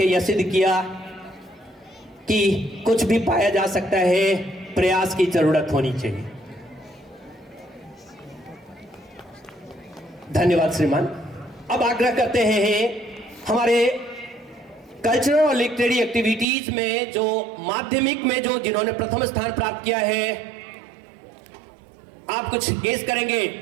यह सिद्ध किया कि कुछ भी पाया जा सकता है, प्रयास की जरूरत होनी चाहिए। धन्यवाद श्रीमान। अब आग्रह करते हैं हमारे कल्चरल और लिटरेरी एक्टिविटीज में जो माध्यमिक में जो जिन्होंने प्रथम स्थान प्राप्त किया है, आप कुछ गेस करेंगे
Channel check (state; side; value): drops out; left; at 16.4 s